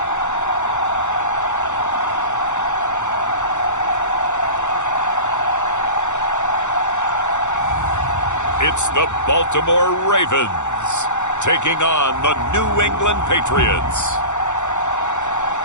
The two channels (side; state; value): right; late; 0.84 ms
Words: It's the Baltimore Ravens taking on the New England Patriots.